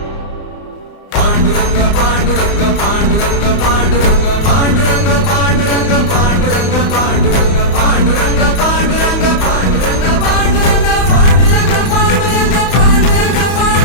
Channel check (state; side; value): late; right; 32 ms